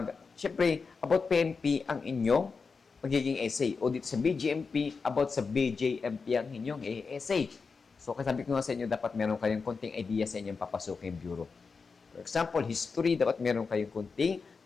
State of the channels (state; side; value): quieter; right; 4.9 dB